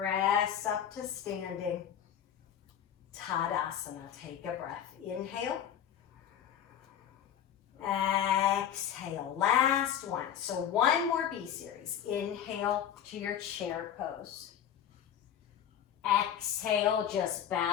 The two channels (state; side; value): quieter; right; 9.6 dB